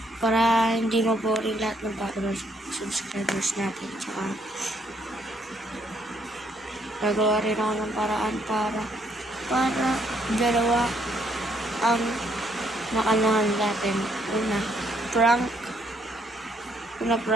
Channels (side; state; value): both; normal; correlation 0.70